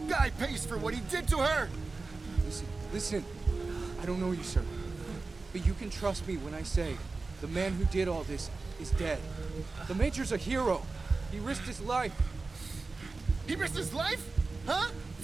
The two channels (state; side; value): quieter; left; 3.8 dB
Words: guy pays for what he did to her! Listen. I don't know you, sir. But you can trust me when I say the man who did all this is dead. The Major's a hero. He risked his life. He risked his life? Huh?